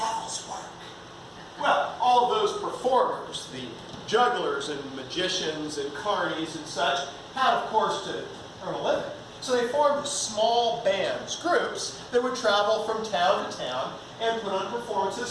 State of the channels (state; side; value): identical; both; correlation 1.00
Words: work. Well, all those performers, the jugglers and magicians and carnies and such, had, of course, to earn a living. So they formed small bands, groups, that would travel from town to town and put on